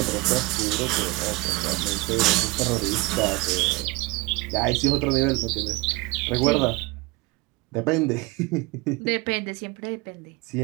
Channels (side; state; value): left; quieter; 23.7 dB